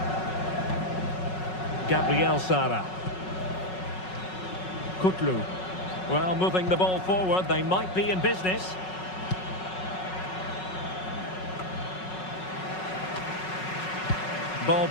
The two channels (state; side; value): late; right; 5.4 ms